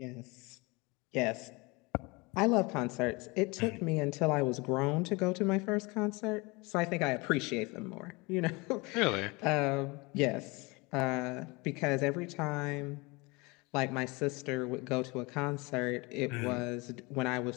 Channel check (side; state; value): right; quieter; 26.0 dB